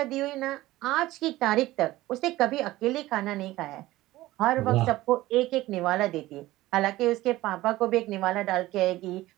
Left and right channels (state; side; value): quieter; left; 17.1 dB